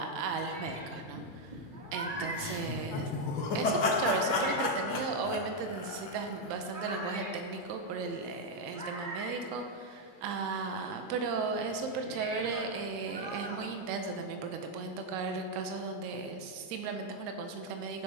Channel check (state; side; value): late; right; 2.6 ms